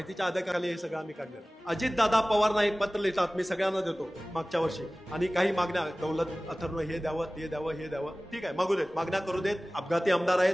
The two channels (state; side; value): normal; both; correlation 0.98